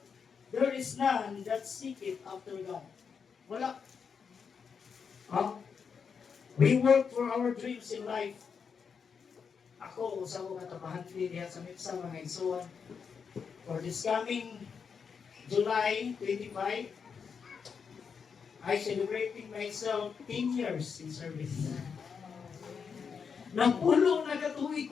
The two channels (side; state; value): right; quieter; 6.2 dB